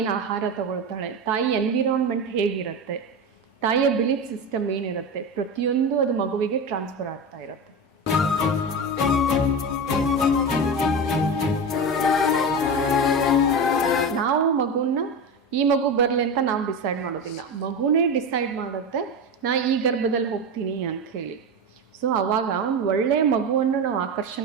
ಆಹಾರ ತಗೊಳ್ತಾಳೆ, ತಾಯಿ ಎನ್ವಿರಾನ್ಮೆಂಟ್ ಹೇಗಿರುತ್ತೆ, ತಾಯಿಯ ಬಿಲೀಫ್ ಸಿಸ್ಟಮ್ ಏನಿರುತ್ತೆ, ಪ್ರತಿಯೊಂದು ಅದು ಮಗುವಿಗೆ ಟ್ರಾನ್ಸ್ಫರ್ ಆಗ್ತಾ ಇರುತ್ತೆ. ನಾವು ಮಗುನ ಈ ಮಗು ಬರಲಿ ಅಂತ ನಾವು ಡಿಸೈಡ್ ಮಾಡೋದಿಲ್ಲ, ಮಗುನೇ ಡಿಸೈಡ್ ಮಾಡುತ್ತೆ ನಾ ಈ ಗರ್ಭದಲ್ಲಿ ಹೋಗ್ತೀನಿ ಅಂತ ಹೇಳಿ. ಸೊ ಆವಾಗ ಒಂದು ಒಳ್ಳೆಯ ಮಗುವನ್ನು ನಾವು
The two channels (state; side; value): normal; both; correlation 0.21